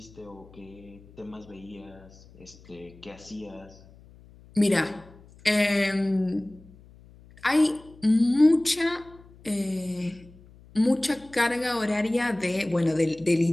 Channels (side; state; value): left; noise; hum, 24 dB below the sound